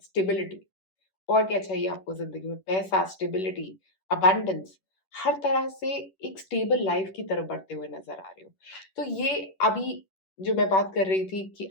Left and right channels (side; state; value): right; late; 10 ms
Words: स्टेबिलिटी। और क्या चाहिए आपको ज़िंदगी में? पैसा, स्टेबिलिटी, अबंडेंस, हर तरह से एक स्टेबल लाइफ़ की तरफ बढ़ते हुए नज़र आ रहे हो। तो ये अभी जो मैं बात कर रही थी कि